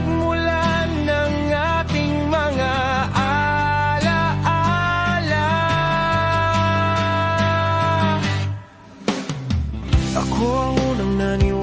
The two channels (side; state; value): both; identical; correlation 1.00